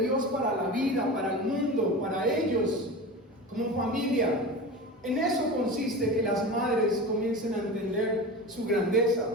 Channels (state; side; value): normal; both; correlation 0.30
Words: Dios para la vida, para el mundo, para ellos, como familia. En eso consiste que las madres comiencen a entender su grandeza,